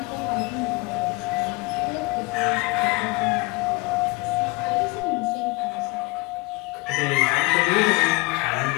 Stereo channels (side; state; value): right; quieter; 24.8 dB